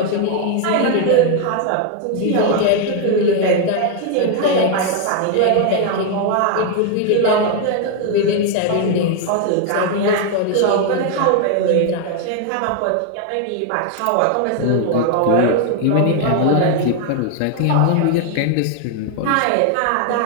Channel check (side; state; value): both; different; correlation 0.00